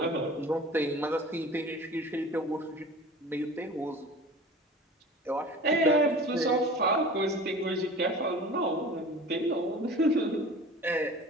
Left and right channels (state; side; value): normal; both; correlation 0.40